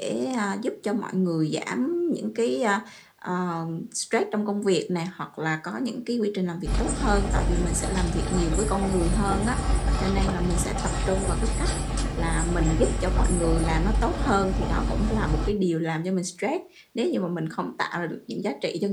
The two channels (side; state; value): both; identical; correlation 1.00